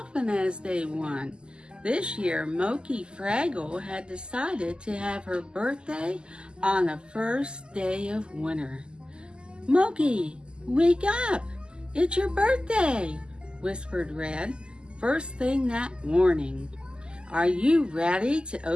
as they want. This year, Mokey Fraggle had decided to have her birthday on the first day of winter. "Mokey, wake up! It's your birthday!" whispered Red, first thing that morning. "Are you ready to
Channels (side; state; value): left; late; 0.048 ms